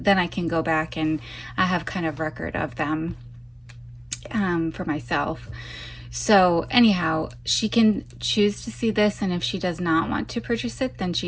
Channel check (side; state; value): both; identical; correlation 1.00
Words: then I can go back and I have kind of record of them for myself. So anyhow, she can choose to see this, and if she does not want to purchase it, then